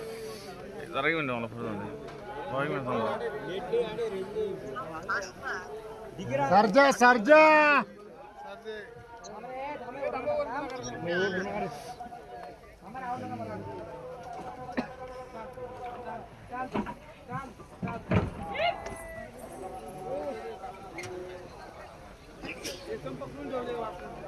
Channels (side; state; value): both; identical; correlation 1.00